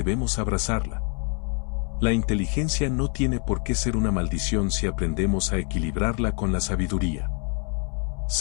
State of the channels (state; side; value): quieter; right; 39.8 dB